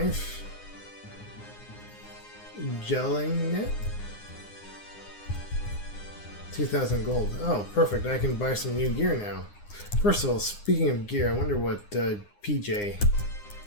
Gelling net. 2,000 gold. Oh, perfect. I can buy some new gear now. First of all, speaking of gear, I wonder what PJ,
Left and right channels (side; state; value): right; late; 9.7 ms